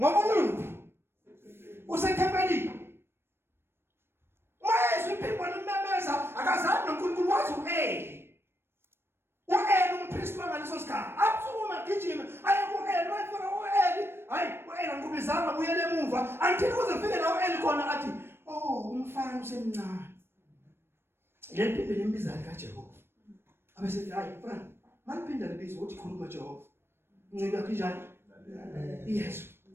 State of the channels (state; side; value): late; left; 0.12 ms